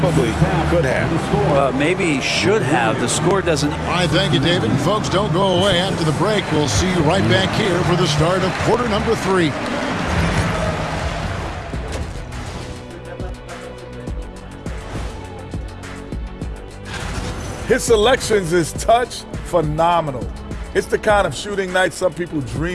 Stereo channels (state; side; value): identical; both; correlation 1.00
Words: could have. Maybe should have. The score doesn't. All right, thank you, David. And folks, don't go away. After the break, we'll see you right back here for the start of quarter number 3. His selections is touch phenomenal. It's the kind of shooting night some people